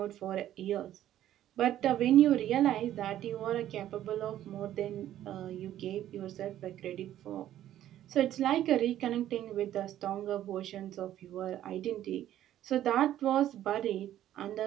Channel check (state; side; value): quieter; left; 12.3 dB